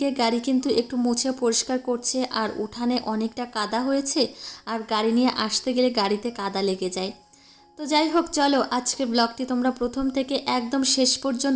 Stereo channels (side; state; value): both; identical; correlation 1.00